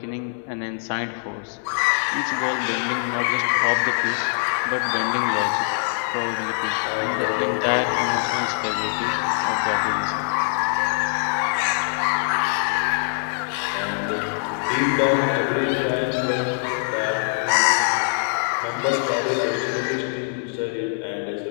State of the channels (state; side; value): silent; right; digital silence